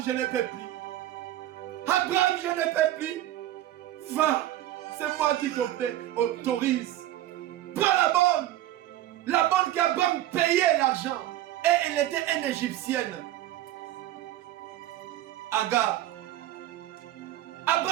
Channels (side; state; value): left; quieter; 13.9 dB